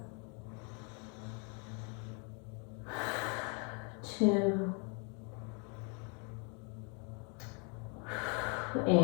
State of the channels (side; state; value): right; quieter; 36.7 dB